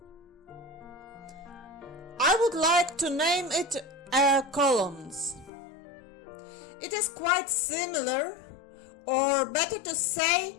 I would like to name it air columns. It is quite similar, or better to say,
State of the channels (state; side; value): drops out; right; at 5.5 s